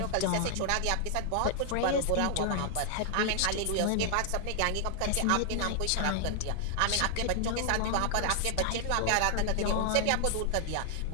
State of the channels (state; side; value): different; both; correlation 0.00